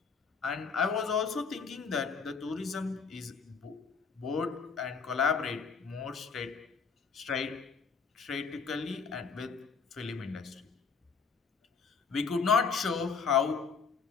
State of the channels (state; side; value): quieter; right; 5.5 dB